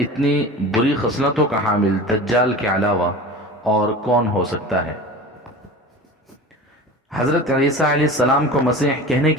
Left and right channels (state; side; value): normal; both; correlation 0.35